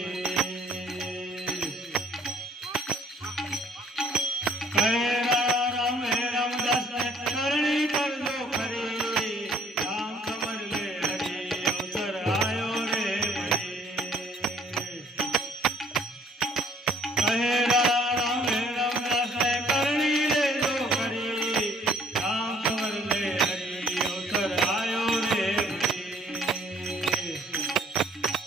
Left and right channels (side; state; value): both; normal; correlation 0.59